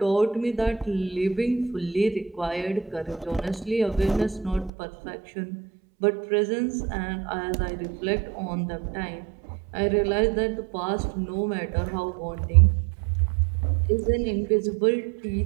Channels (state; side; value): drops out; left; at 4.7 s